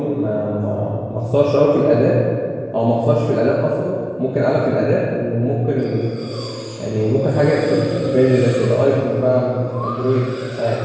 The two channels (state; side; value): identical; both; correlation 1.00